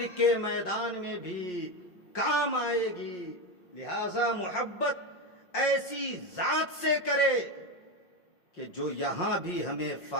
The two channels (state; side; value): late; right; 5.6 ms